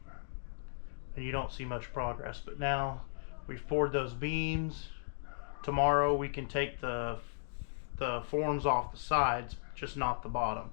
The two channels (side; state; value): right; silent; digital silence